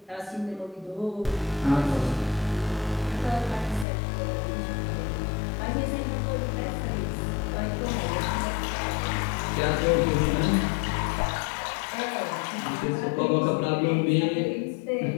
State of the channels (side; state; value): right; drops out; at 3.9 s